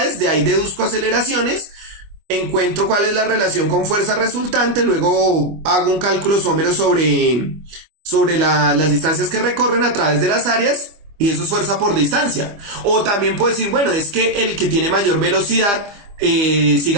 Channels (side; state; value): left; late; 25 ms